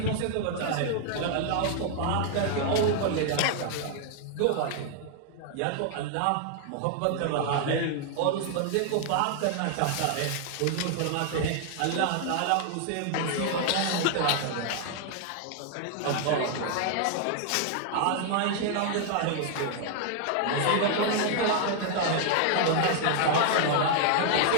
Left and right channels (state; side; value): different; both; correlation 0.00